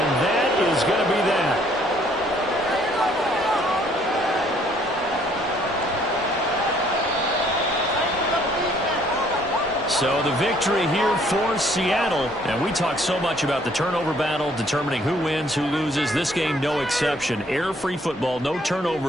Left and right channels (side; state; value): both; normal; correlation 0.63